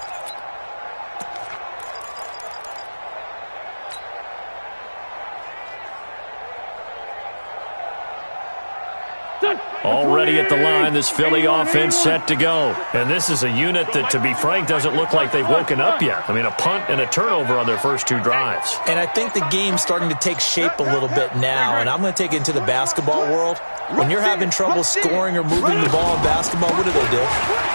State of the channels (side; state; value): both; inverted; correlation -1.00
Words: Already at the line, this Philly offense set to go. And this is a unit that, to be frank, doesn't look like they've woken up yet. I mean, a punt and a turnover on their first two drives. And I think the game's starting to take shape a little bit now, and I'm going to take it into the basketball world. When you're having trouble scoring or moving the ball in basketball, what do?